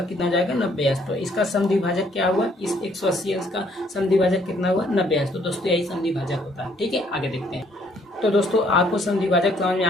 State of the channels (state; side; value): normal; both; correlation 0.65